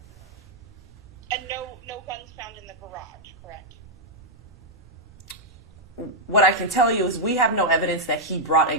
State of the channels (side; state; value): both; normal; correlation -0.05